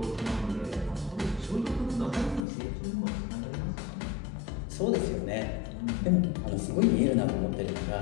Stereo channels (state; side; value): drops out; right; at 2.5 s